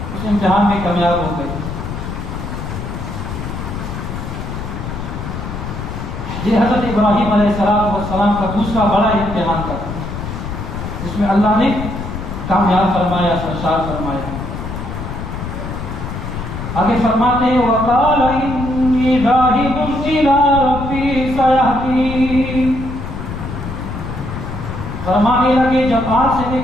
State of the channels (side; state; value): left; noise; rumble, 7 dB below the sound